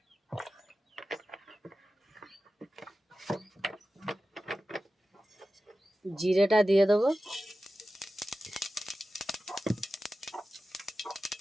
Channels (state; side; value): normal; both; correlation 0.94